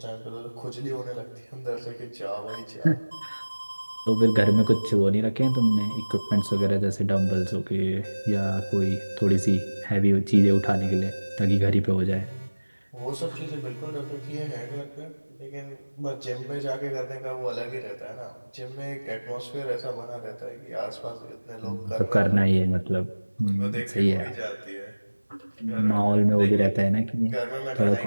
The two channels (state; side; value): inverted; both; correlation -1.00